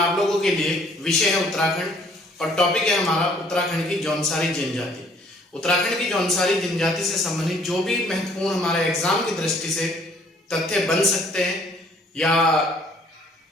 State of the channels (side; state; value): both; normal; correlation 0.60